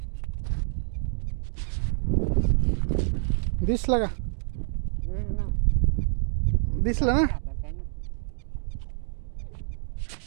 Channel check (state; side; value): silent; left; 56 dB below the other